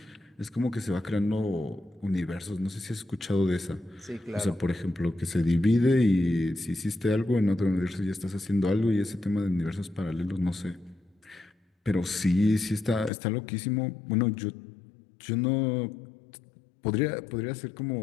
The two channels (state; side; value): drops out; right; at 13.1 s